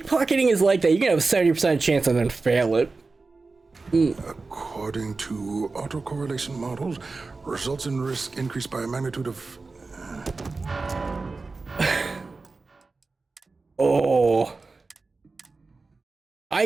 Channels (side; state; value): left; quieter; 3.9 dB